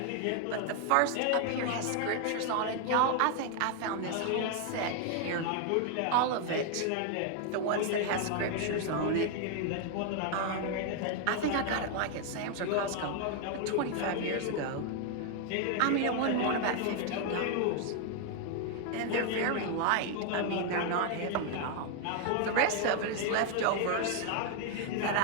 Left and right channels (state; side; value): different; both; correlation 0.00